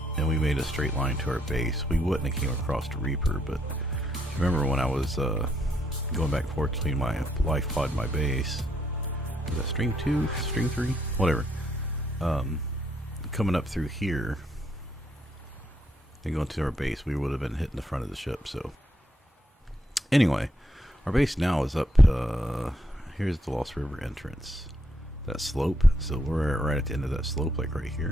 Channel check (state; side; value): normal; both; correlation 0.75